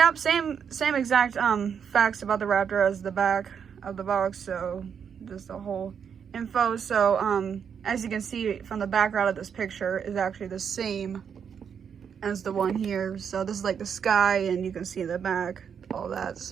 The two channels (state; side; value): quieter; left; 7.3 dB